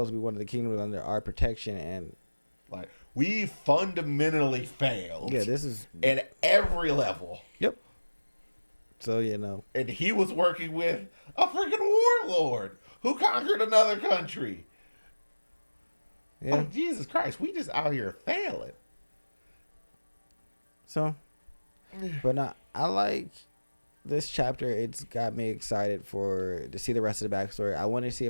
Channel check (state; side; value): inverted; both; correlation -1.00